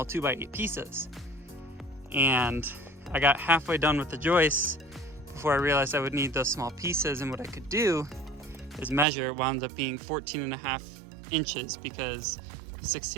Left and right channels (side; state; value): left; drops out; at 9.1 s